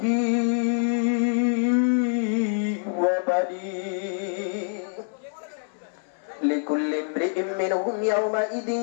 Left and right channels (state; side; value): silent; right; 61 dB below the other